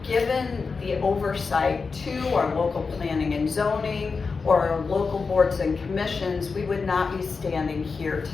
given the oversight to our local planning and zoning or our local boards and commissions, we would not be standing here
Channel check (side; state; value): right; quieter; 4.7 dB